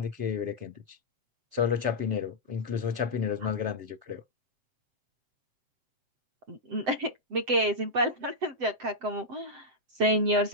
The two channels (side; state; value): left; late; 7.7 ms